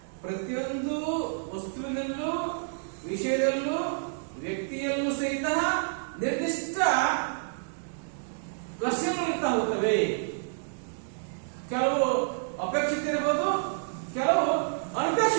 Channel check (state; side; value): silent; left; digital silence